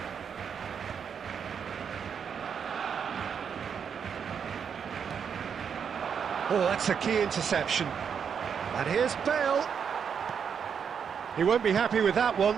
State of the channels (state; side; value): quieter; left; 7.1 dB